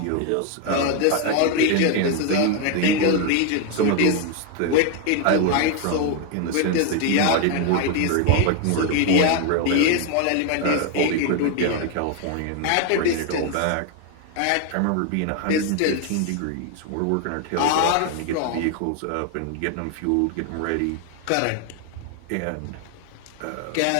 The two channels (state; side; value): different; both; correlation 0.01